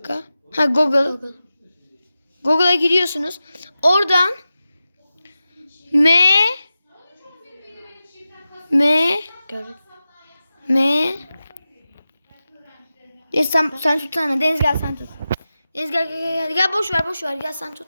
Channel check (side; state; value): both; inverted; correlation -0.93